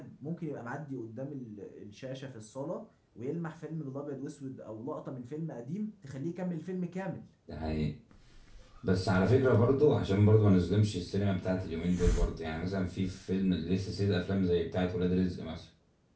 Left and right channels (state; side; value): identical; both; correlation 1.00